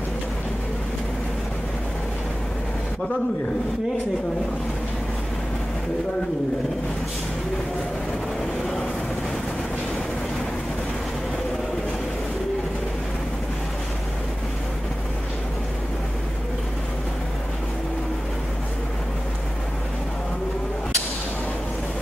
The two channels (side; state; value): both; normal; correlation 0.95